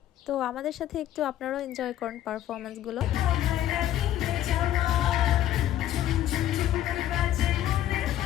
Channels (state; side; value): quieter; right; 12.3 dB